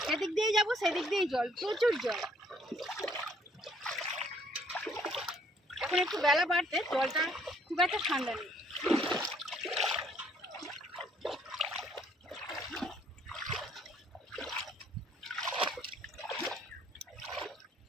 সেদিক দিয়েই যাবো, সেদিক দিয়েই জল, প্রচুর জল। এখন একটু বেলা বাড়তে জলটা খুব একটা ঠান্ডা নেই।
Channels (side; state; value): both; normal; correlation 0.64